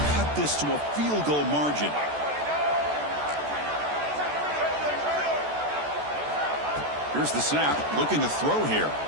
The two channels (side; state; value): left; late; 14 ms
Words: cut this to a field goal margin. Here's the snap, looking to throw here.